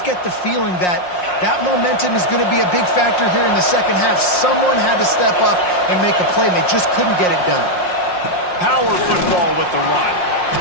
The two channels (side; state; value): right; late; 5.6 ms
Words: get the feeling that that momentum is going to be a big factor here in the second half. Someone had to step up and make a play, and they just couldn't get it done. Power football with the run.